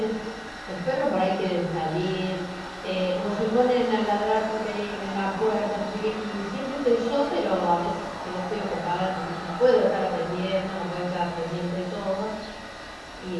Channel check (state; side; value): identical; both; correlation 1.00